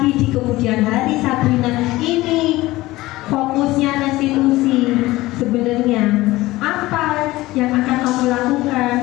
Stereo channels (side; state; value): right; quieter; 18.4 dB